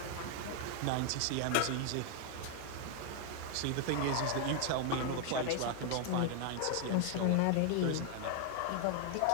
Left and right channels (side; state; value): both; different; correlation 0.00